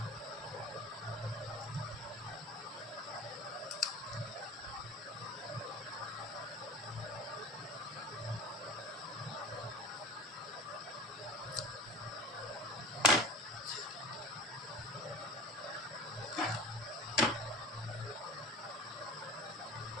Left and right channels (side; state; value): both; normal; correlation 0.37